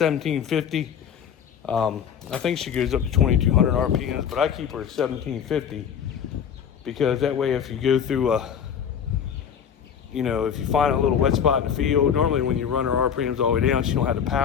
I think she goes up to 2200 RPMs, but I keep her at 1750 because that way, if you go through if you find a little wet spot in the field, normally when you run her RPMs all the way down, she don't have the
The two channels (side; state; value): right; quieter; 7.9 dB